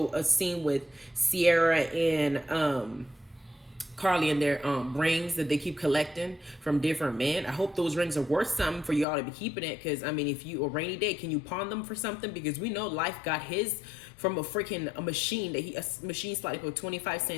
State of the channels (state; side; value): drops out; right; at 9.1 s